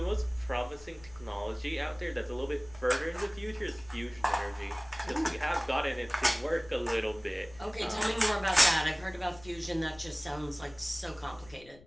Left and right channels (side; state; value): left; noise; rumble, 22 dB below the sound